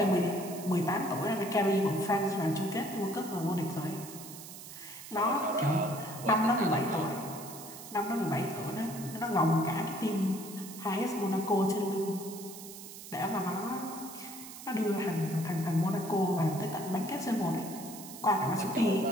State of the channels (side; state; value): right; noise; hiss, 13 dB below the sound